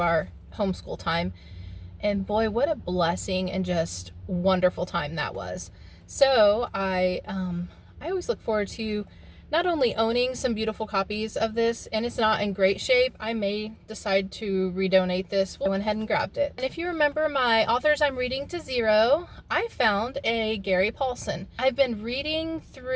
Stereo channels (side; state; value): both; identical; correlation 1.00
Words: homeschool time, and boy, what a blessing and just wonderful time that was. So I always look forward to not only owning some beautiful copies of this, and it's not in great shape, I may decide to redonate this. I went ahead and grabbed it. And if you remember my authors I'm reading to zero, I found a Gary Paulson. I've been reading